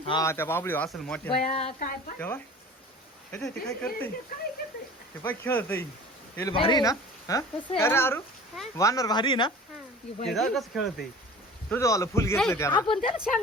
हा त्या बाबळी असेल मोठ्या तेव्हा ते काय करते ते पाय खेळत भारी ना हा अरे अरू वानर भारी ना ते कसं खेळत तुझं वाला फुल घेतलं त्याला आपण त्याला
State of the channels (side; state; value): both; normal; correlation 0.42